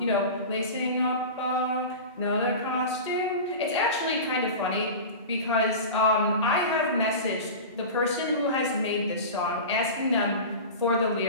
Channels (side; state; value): both; inverted; correlation -0.30